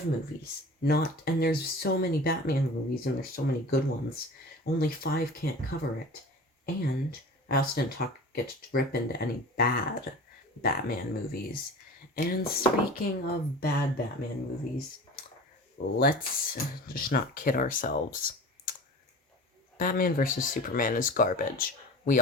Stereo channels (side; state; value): both; normal; correlation 0.37